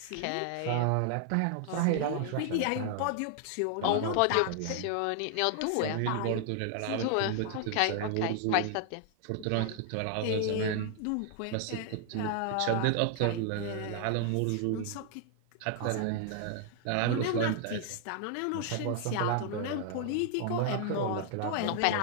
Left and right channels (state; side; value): different; both; correlation 0.00